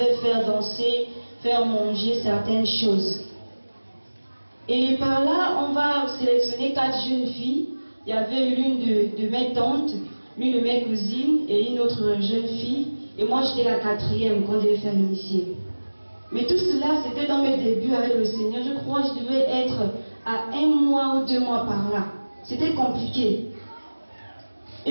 faire danser, faire manger certaines choses. Et par là, on va sélectionner 4 jeunes filles. Il y avait l'une de mes tantes, l'une de mes cousines et une autre jeune fille. Et moi, j'étais la 4e qu'on devait faire initier. Mais tout cela, c'était dans mes débuts avec le Seigneur. Je crois que je devais être à 1 mois ou 2 mois par là. C'était compliqué.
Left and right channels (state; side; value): inverted; both; correlation -1.00